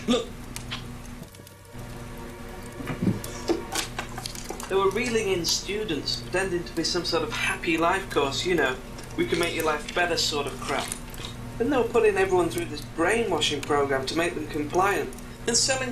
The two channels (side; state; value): both; identical; correlation 1.00